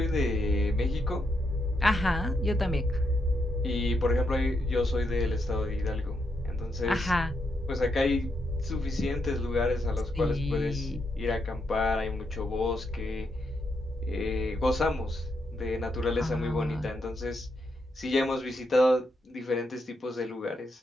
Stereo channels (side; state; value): both; normal; correlation 0.81